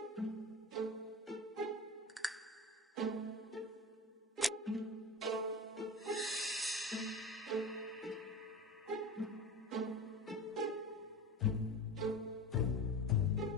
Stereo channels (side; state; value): both; normal; correlation 0.31